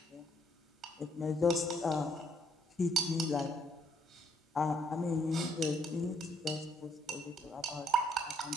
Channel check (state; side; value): normal; both; correlation 0.69